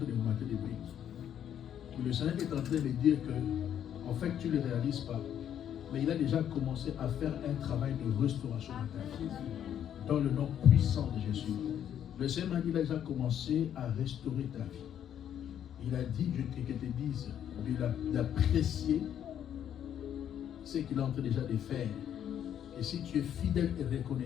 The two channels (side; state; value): right; quieter; 9.8 dB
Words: de monter des briques. Et le Seigneur est en train de dire que, en fait, tu ne le réalises pas. Mais il a déjà commencé à faire un travail de restauration de ta vie. Dans le nom puissant de Jésus. Le Seigneur m'a dit, il a déjà commencé à restaurer ta vie. Il a dit que te dise d'apprécier ce qu'il est en train déjà de faire. Et si tu es fidèle et